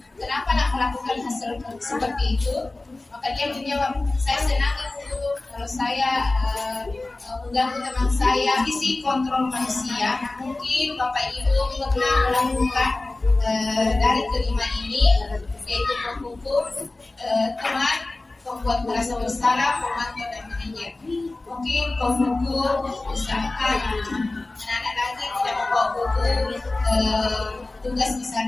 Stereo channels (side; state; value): right; quieter; 3.1 dB